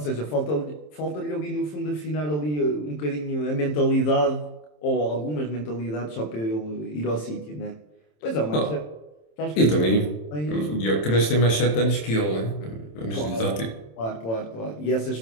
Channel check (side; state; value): right; late; 27 ms